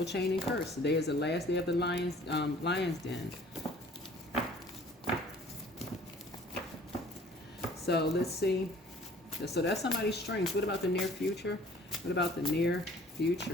chain, and curse. Today is the last day of the lion's den. So let's see. So that's somebody's strengths. What about the near future? What about the near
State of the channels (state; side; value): normal; both; correlation 0.53